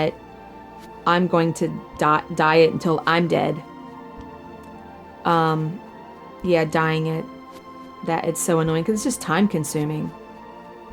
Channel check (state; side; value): identical; both; correlation 1.00